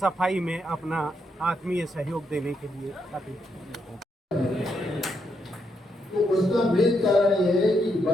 सफाई में अपना आत्मीय सहयोग देने के लिए अपील। तो उसका मेन कारण ये है कि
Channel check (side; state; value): both; normal; correlation 0.79